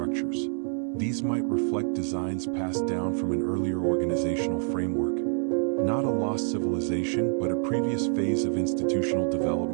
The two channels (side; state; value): left; silent; 60 dB below the other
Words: These might reflect designs passed down from an earlier organizational framework. Not a lost civilization, but a previous phase of institutional